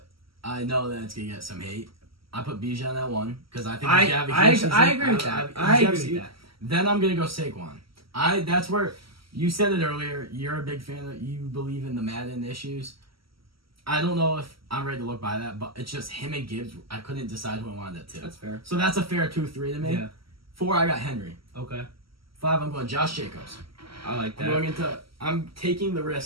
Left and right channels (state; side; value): late; left; 0.75 ms